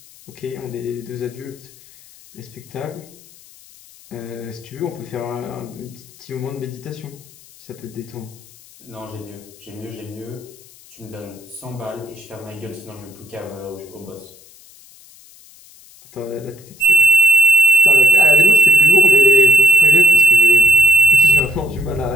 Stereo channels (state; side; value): noise; left; hiss, 25 dB below the sound